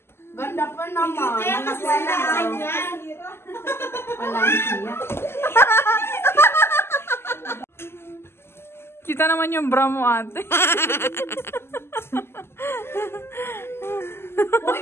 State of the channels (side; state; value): right; late; 0.12 ms